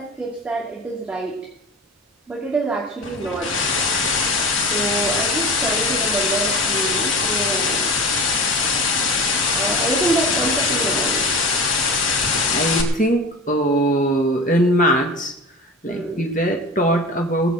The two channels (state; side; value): normal; both; correlation 0.32